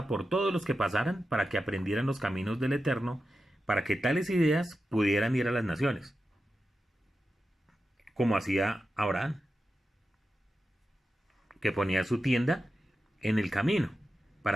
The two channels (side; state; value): both; normal; correlation 0.91